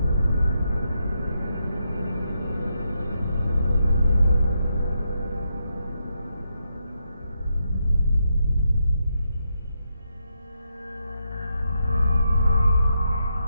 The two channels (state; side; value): inverted; both; correlation -0.82